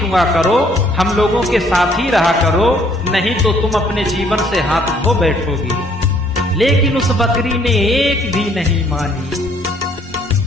करो, हम लोगों के साथ ही रहा करो, नहीं तो तुम अपने जीवन से हाथ धो बैठोगी। लेकिन उस बकरी ने एक भी नहीं मानी।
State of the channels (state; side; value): normal; both; correlation 0.63